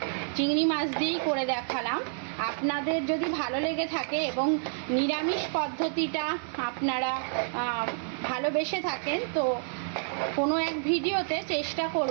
চিংড়ি মাছ দিয়েই করে দেখালাম। আপনাদের যদি ভালো লেগে থাকে এবং নিরামিষ পদ্ধতিটা আপনারা ভালোবেসে থাকেন, তো কোনো এক ভিডিওতে চেষ্টা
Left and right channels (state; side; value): silent; left; 59 dB below the other